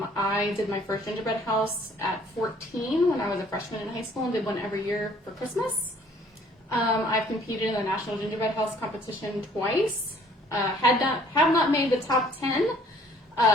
I did my first gingerbread house at 14 when I was a freshman in high school and did one every year for Christmas. I've competed in the National Gingerbread House competition twice. Have not made the top 10,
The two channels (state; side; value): normal; both; correlation 0.58